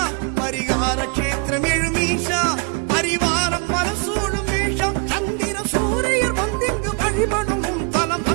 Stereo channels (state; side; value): quieter; left; 35.3 dB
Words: பரிகார கஷேத்திரம் எழும் ஈஷா, பரிவாரம் பல சூழும் ஈஷா. சந்திர சூரியர் வந்திங்கு வழிபடும் உன் தலம்,